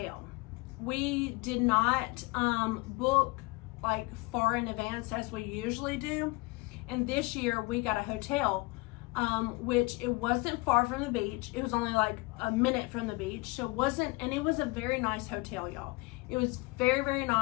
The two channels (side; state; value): right; quieter; 25.2 dB